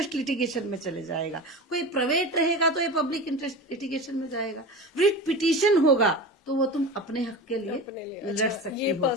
लिटिगेशन में चले जाएगा। कोई प्राइवेट रहेगा तो ये पब्लिक इंटरेस्ट लिटिगेशन में जाएगा। रिट पिटीशन होगा तो वो तुम अपने हक के लिए अपने लिए लड़ अच्छा, सकती ये हो।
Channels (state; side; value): normal; both; correlation 0.29